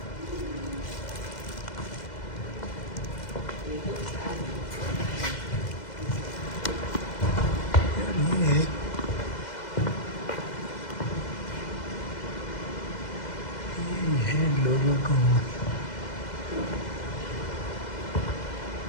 ये है लोगों को।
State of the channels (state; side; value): late; right; 2.0 ms